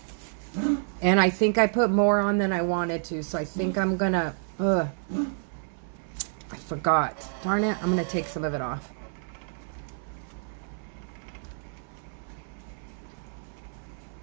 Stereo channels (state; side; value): silent; left; 57 dB below the other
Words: And I think I put more on than I wanted to, so I think I'm going to, I forgot. Darn it, I'm going to take some of it off.